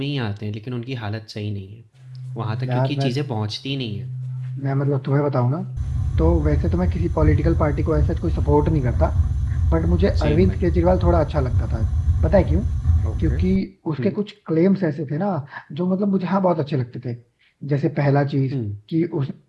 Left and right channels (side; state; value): both; identical; correlation 1.00